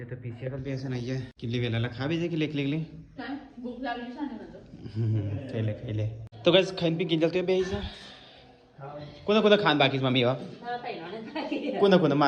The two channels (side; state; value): both; identical; correlation 1.00